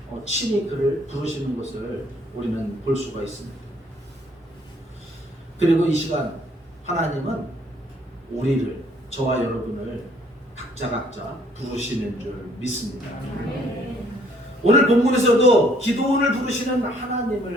친히 그를 부르시는 것을 우리는 볼 수가 있습니다. 그리고 이 시간 하나님은 우리를, 저와 여러분을 각자 부르시는 줄 믿습니다. 오늘 본문에서도 기도원을 부르시는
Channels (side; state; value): both; normal; correlation 0.63